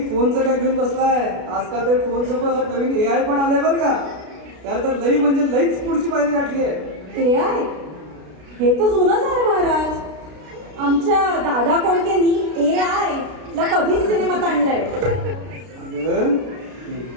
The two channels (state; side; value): late; left; 33 ms